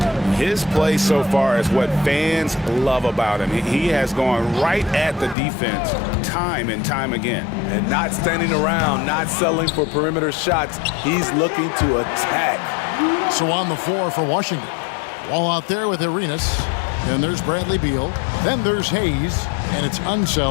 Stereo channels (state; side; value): drops out; right; at 5.4 s